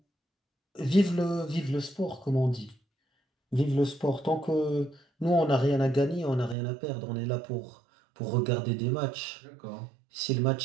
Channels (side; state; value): left; drops out; at 6.6 s